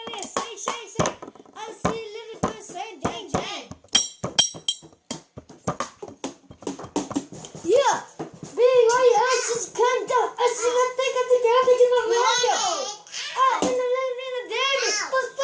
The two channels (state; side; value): identical; both; correlation 1.00